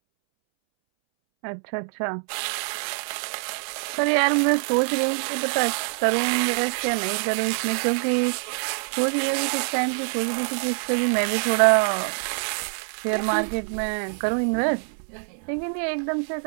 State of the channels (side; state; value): left; silent; 62 dB below the other